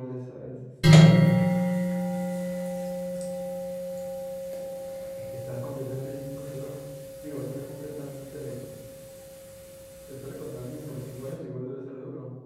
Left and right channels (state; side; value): identical; both; correlation 1.00